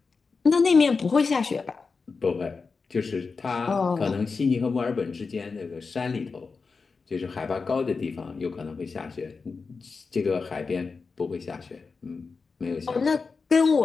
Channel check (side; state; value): right; quieter; 4.7 dB